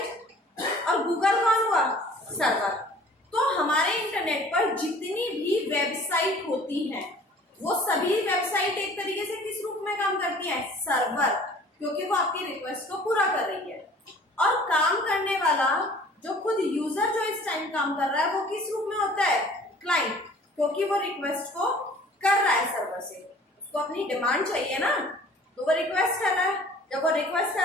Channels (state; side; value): normal; both; correlation 0.50